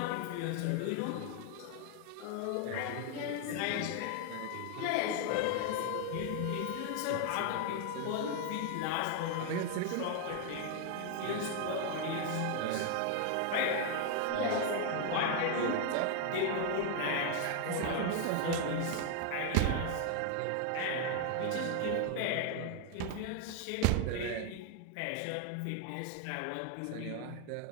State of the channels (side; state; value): both; different; correlation 0.00